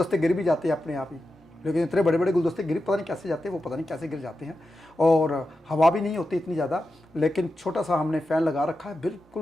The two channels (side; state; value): both; normal; correlation 0.90